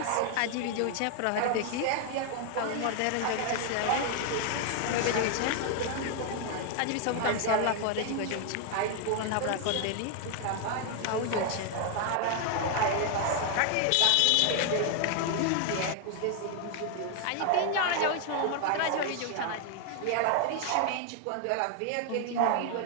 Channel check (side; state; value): both; different; correlation 0.00